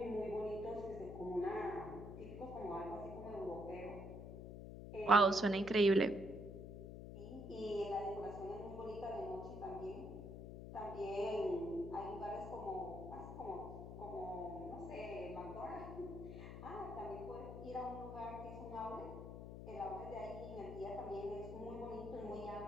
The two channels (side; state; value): left; noise; hum, 9 dB below the sound